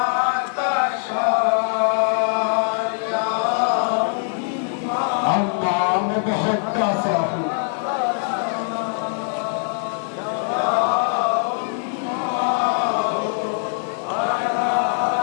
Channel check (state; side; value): silent; right; 64 dB below the other